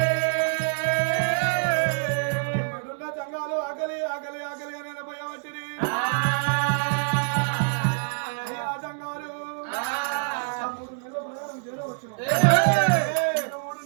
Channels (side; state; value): left; silent; 61 dB below the other